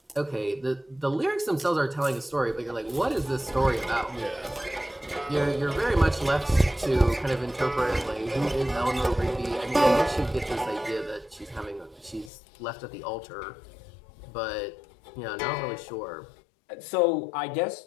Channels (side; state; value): right; drops out; at 12.3 s